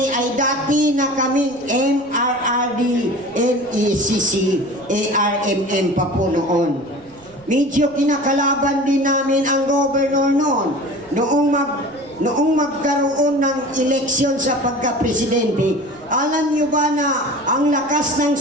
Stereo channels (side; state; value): right; noise; rumble, 27 dB below the sound